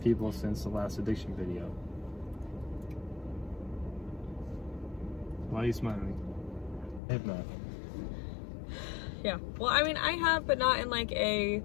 since the last addiction video? Why are you smiling? I have not. Yeah. Well, I mean, I have, but not in like a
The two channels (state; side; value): drops out; right; at 7.0 s